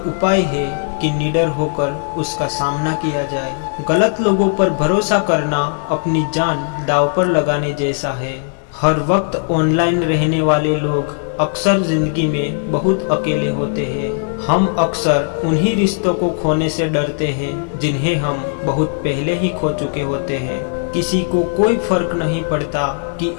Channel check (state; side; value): silent; right; 57 dB below the other